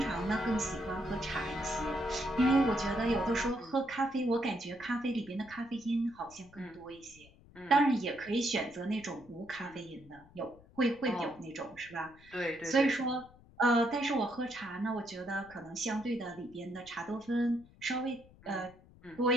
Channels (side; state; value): left; noise; rumble, 24 dB below the sound